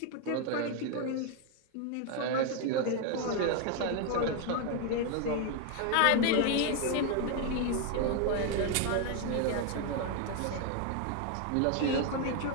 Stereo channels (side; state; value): both; different; correlation 0.01